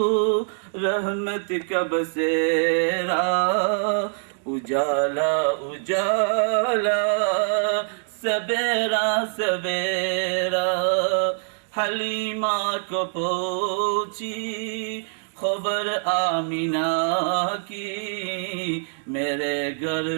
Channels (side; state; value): left; silent; digital silence